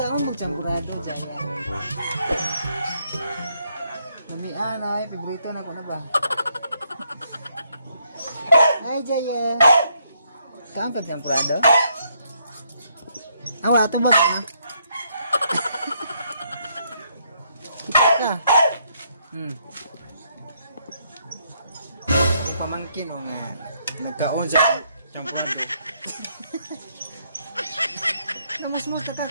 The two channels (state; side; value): inverted; both; correlation -0.73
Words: magchampurado Jaya. Namian ay, paborito na ko na ba? Hi Jaya! Kaon pagchampurado? Awa, ito ba ka? Yung pamangkin o nga nagkaon sa champurado. Namas-mas